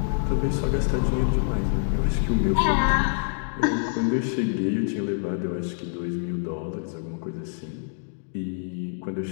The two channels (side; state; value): right; silent; digital silence